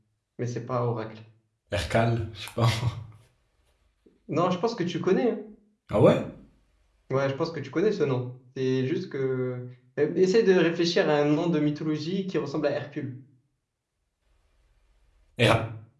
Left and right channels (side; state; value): both; identical; correlation 1.00